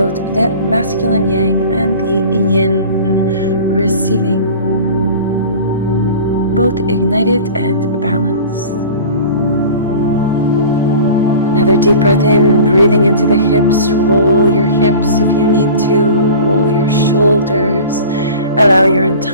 the masculine yang and the yin receiving, both ignited and balanced. Another deep breath in, breathing into the hips. Roll your hips if you need to. Roll your shoulders. Allow your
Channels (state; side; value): inverted; both; correlation -0.39